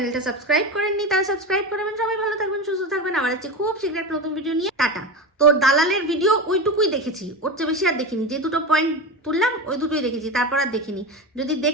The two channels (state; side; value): normal; both; correlation 0.22